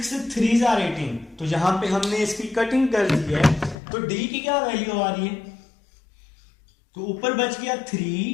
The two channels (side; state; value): right; drops out; at 3.8 s